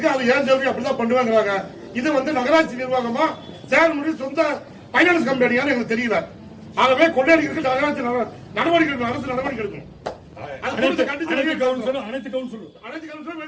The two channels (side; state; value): both; identical; correlation 1.00